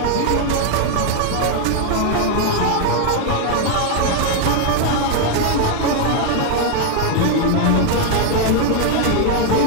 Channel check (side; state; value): both; different; correlation 0.01